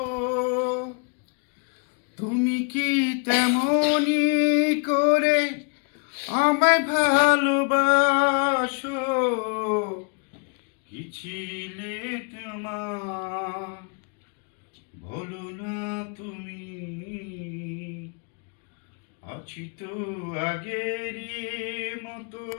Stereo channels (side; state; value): right; quieter; 38.1 dB